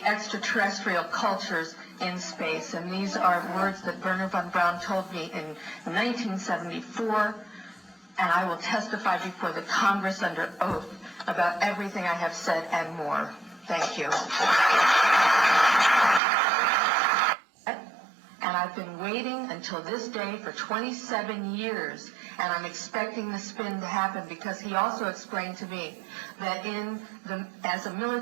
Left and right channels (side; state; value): left; drops out; at 16.2 s